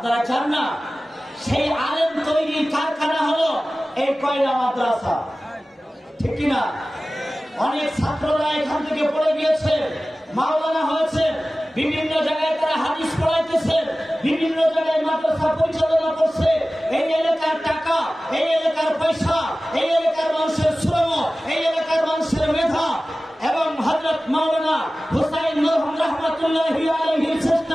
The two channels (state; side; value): normal; both; correlation 0.97